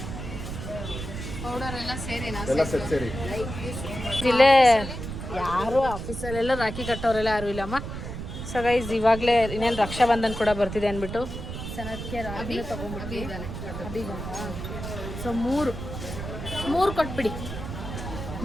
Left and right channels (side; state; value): right; noise; rumble, 7 dB below the sound